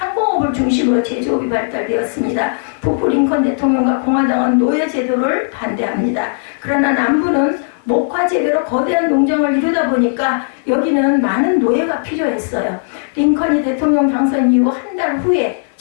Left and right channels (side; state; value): right; silent; 56 dB below the other